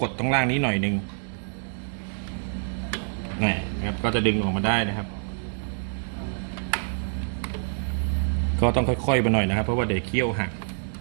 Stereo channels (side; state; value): left; silent; digital silence